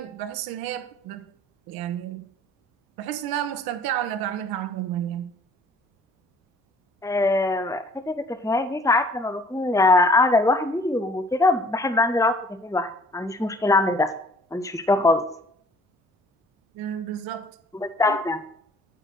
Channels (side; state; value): both; normal; correlation 0.53